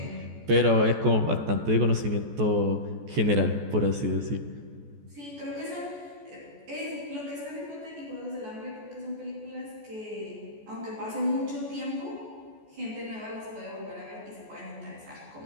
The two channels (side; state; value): left; late; 14 ms